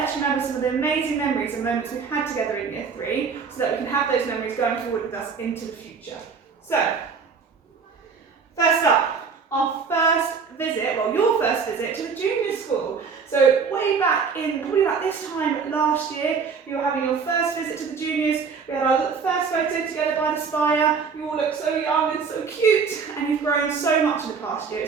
remember some of the amazing memories and moments we've had together in year 3, so that we can have those memories going forward with us into the future. So, first up, our first visit, well, your first visit to the junior school. So way back in, probably about this time last year, you were having your first visit to the juniors. We had our first photo together by the spire. You all look so young and so cute, and you've grown so much in the past year.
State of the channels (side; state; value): left; quieter; 5.7 dB